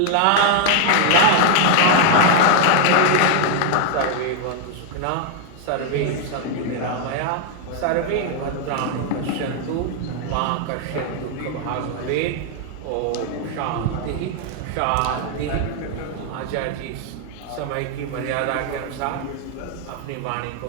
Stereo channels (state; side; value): different; both; correlation 0.00